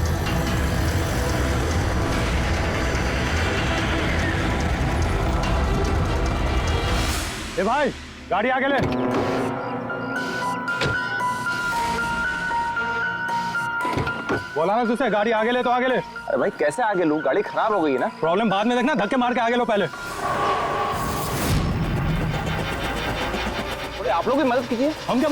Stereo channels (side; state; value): both; identical; correlation 1.00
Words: ए भाई, गाड़ी आगे ले। बोला ना तुझसे, गाड़ी आगे ले तो आगे ले। अरे भाई कैसे आगे लूं? गाड़ी खराब हो गई है ना। प्रॉब्लम बाद में देखना, धक्के मार के आगे लो पहले। थोड़ी आप लोग भी मदद कीजिए। हम क्या